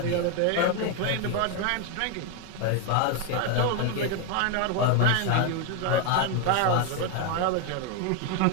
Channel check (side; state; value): both; different; correlation 0.01